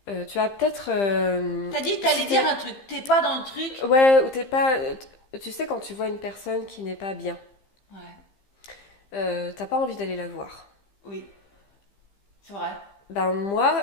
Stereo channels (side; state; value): right; late; 15 ms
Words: tu as peut-être... T'as dit que t'allais dire un truc. T'es pas dans le truc. Ouais, ou t'es pas... Tu sais, quand tu vois une personne qui n'est pas bien, t'as pas envie d'aller la voir. Oui, c'est vrai. Moi,